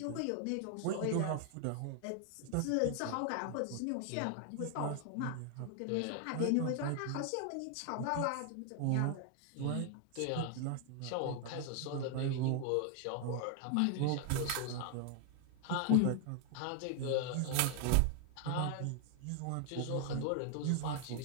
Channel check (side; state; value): both; different; correlation 0.00